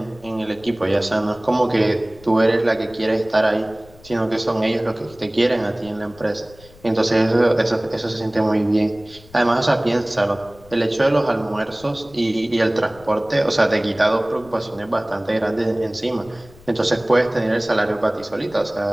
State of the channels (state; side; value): noise; left; rumble, 24 dB below the sound